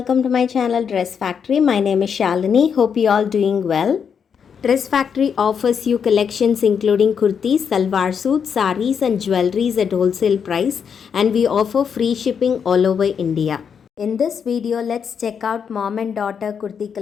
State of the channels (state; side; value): quieter; right; 7.0 dB